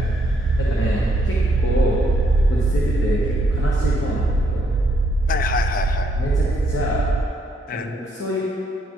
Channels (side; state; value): both; normal; correlation 0.73